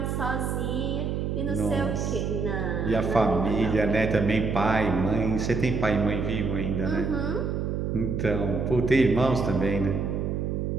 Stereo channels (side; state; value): right; noise; hum, 1 dB below the sound